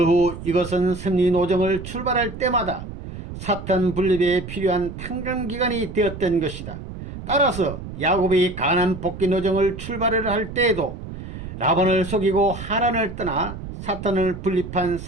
후 이것은 승리 노정을 출발할 때마다 사탄 분립에 필요한 탕감 기간이 되었던 것이다. 따라서 야곱이 가나안 복귀 노정을 출발을 할 때에도 라반을 속이고 하란을 떠나 사탄을 분립한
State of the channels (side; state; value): right; noise; rumble, 10 dB below the sound